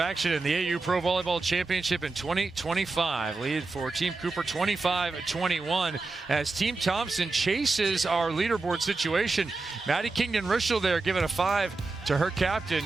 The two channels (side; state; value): left; quieter; 3.7 dB